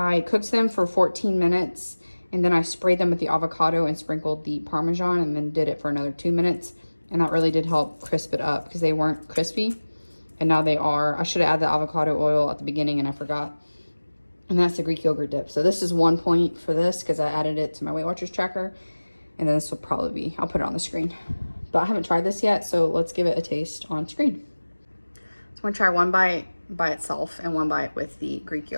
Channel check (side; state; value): both; inverted; correlation -1.00